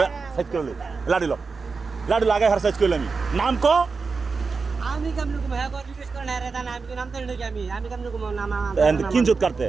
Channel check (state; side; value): quieter; left; 4.7 dB